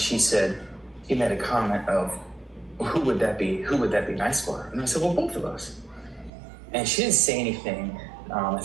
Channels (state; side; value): drops out; left; at 6.3 s